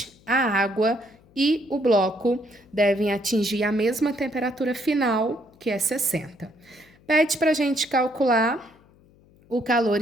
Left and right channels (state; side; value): noise; left; hum, 29 dB below the sound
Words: a água e o bloco devem atingir a mesma temperatura final, que é 60. Pede para a gente calcular o calor